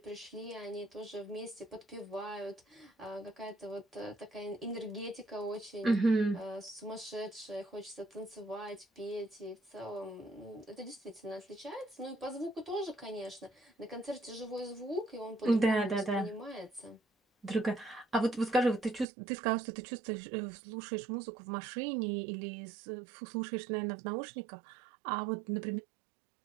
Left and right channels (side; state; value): left; drops out; at 19.1 s